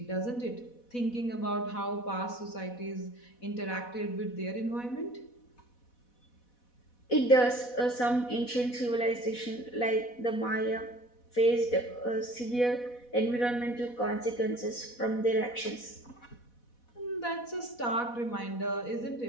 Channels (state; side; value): late; right; 4.1 ms